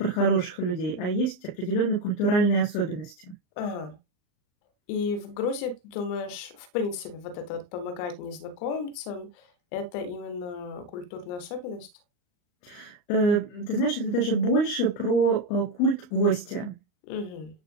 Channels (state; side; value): late; right; 39 ms